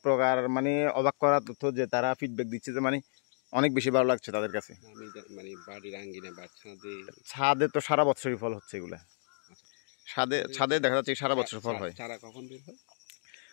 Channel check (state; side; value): silent; right; digital silence